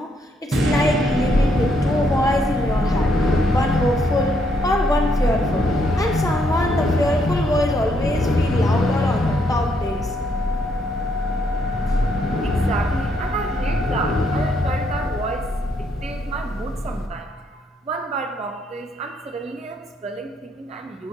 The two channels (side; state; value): both; normal; correlation 0.74